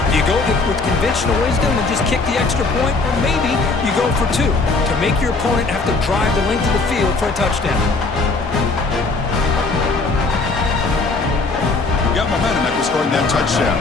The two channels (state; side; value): quieter; right; 3.8 dB